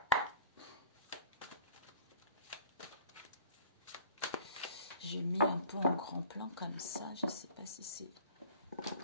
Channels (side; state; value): both; inverted; correlation -0.47